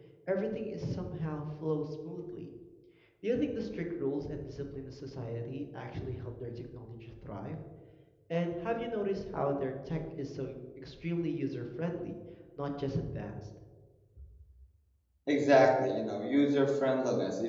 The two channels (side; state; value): both; identical; correlation 1.00